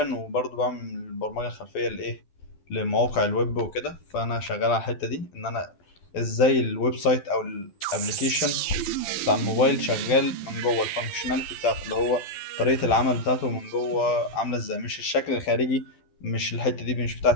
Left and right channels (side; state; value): right; late; 12 ms